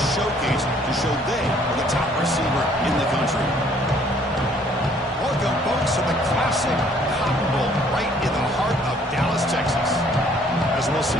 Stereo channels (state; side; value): normal; both; correlation 0.60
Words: showcase to show they are the top receiver in the country. Welcome, folks, to the classic Cotton Bowl right in the heart of Dallas, Texas. As we'll see